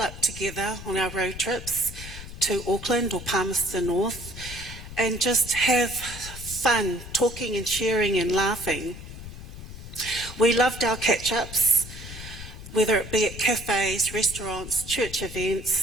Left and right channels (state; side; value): noise; left; rumble, 12 dB below the sound